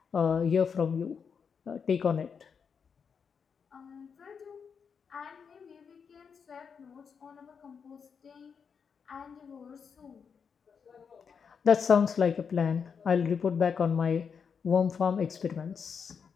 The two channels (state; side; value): quieter; right; 6.3 dB